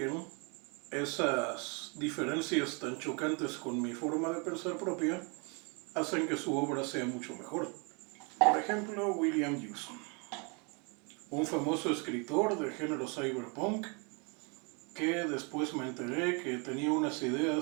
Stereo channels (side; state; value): left; quieter; 33.4 dB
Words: esas diferencias tan chocantes con mi forma de pensar propia hacen que su obra sea mucho mejor. Por ejemplo, William Gibson, un famoso escritor de género cyberpunk, que después me enteré que tenía unas